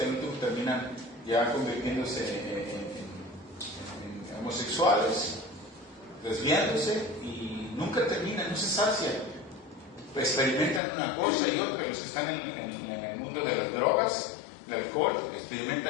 terminan ya convirtiéndose en homosexuales, desviándose y nunca terminan, no se sacian. Experimentan una cosa y otra. Los que están en el mundo de las drogas, el alcohol,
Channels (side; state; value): right; drops out; at 10.8 s